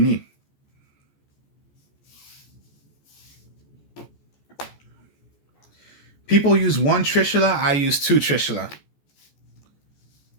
People use 1 Trishula, I use 2 Trishula.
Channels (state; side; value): late; right; 14 ms